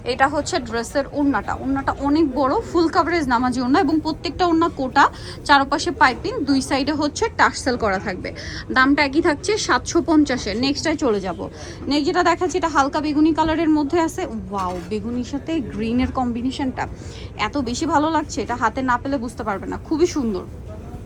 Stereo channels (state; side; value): identical; both; correlation 1.00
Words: এটা হচ্ছে ড্রেসের ওড়নাটা, ওড়নাটা অনেক বড়, ফুল কাভারেজ নামাজি ওড়না এবং প্রত্যেকটা ওড়না কোটা, চারপাশে পাইপিং, দুই সাইডে হচ্ছে টার্সেল করা থাকবে। দামটা একই থাকছে 750-এর। নেক্সটটায় চলে যাব। নেক্সট যেটা দেখাচ্ছি এটা হালকা বেগুনি কালারের মধ্যে আছে। ওয়াও, বেগুনির সাথে গ্রিনের কম্বিনেশনটা এত বেশি ভালো লাগছে, এটা হাতে না পেলে বুঝতে পারবে না, খুবই সুন্দর।